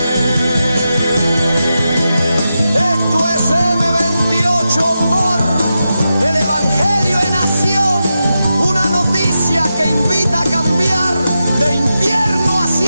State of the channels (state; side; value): inverted; both; correlation -0.89